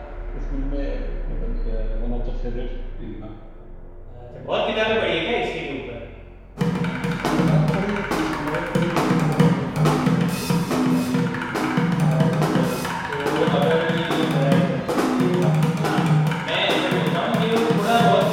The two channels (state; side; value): identical; both; correlation 1.00